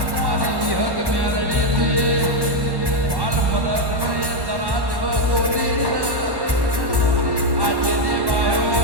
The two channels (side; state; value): left; late; 1.1 ms